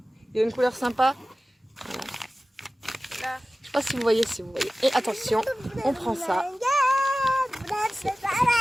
il y a une couleur sympa. Voilà. Là. Je sais pas si vous voyez, Et attention, on prend ça.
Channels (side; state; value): both; normal; correlation 0.96